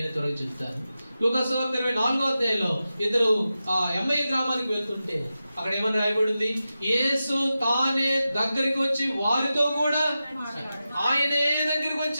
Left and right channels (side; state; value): both; inverted; correlation -0.92